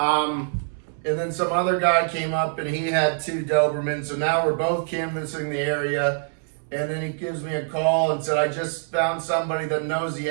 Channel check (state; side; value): silent; left; 62 dB below the other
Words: then some other guy came up and he had 2 Dobermans. So now we're both canvassing the area. And then he gives me a call and said, I just found somebody that knows the